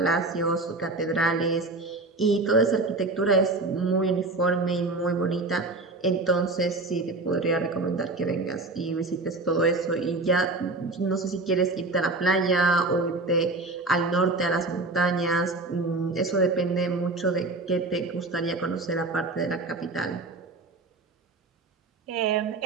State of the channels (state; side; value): quieter; left; 3.2 dB